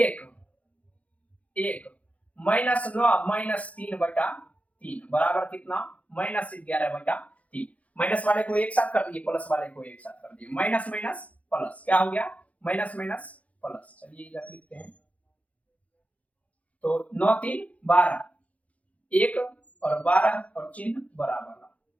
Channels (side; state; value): right; late; 0.067 ms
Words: 1 -9 -3/3 बराबर कितना -11/3। माइनस वाले को एक साथ कर दिए, प्लस वाले को एक साथ कर दिए, माइनस माइनस प्लस क्या हो गया माइनस माइनस प्लस। चलिए इधर लिखते हैं तो 9 3 12 1 और 12 और चिन्ह बराबर